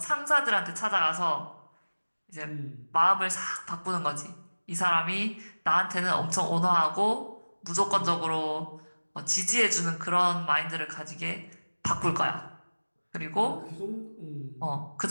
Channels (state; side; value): inverted; both; correlation -1.00